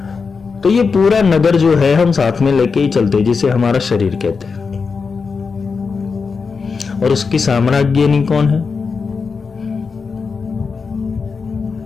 तो ये पूरा नगर जो है हम साथ में लेके ही चलते हैं, जिसे हमारा शरीर कहते हैं। और उसकी साम्राज्ञनी कौन है?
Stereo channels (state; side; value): quieter; right; 5.1 dB